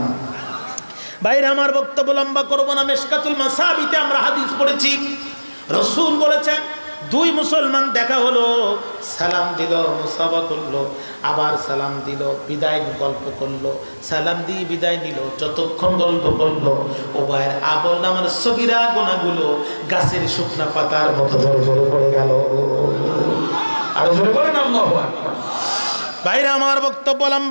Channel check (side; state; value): both; inverted; correlation -1.00